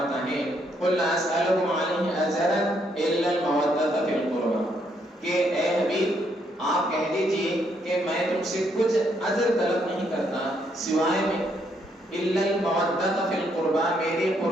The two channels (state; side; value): normal; both; correlation 0.73